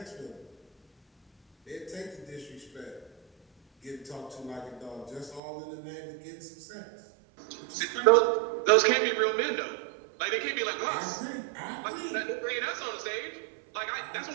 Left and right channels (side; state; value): left; drops out; at 5.4 s